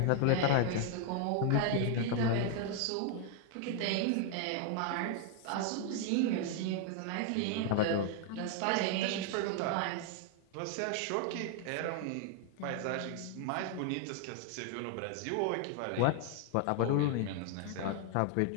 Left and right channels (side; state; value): both; different; correlation 0.00